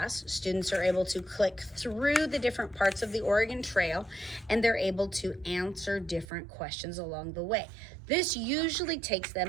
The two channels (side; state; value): left; drops out; at 6.2 s